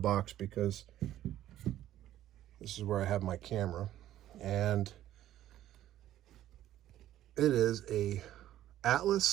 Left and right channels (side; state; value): left; quieter; 12.9 dB